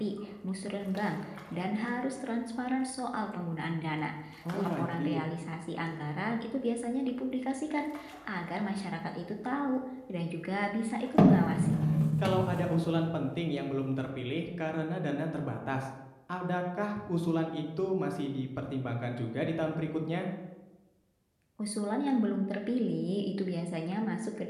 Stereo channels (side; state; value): both; identical; correlation 1.00